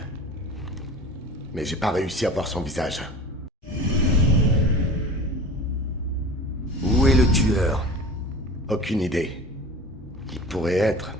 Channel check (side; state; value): both; normal; correlation 0.37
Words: Mais j'ai pas réussi à voir son visage. Où est le tueur? Aucune idée. Il pourrait être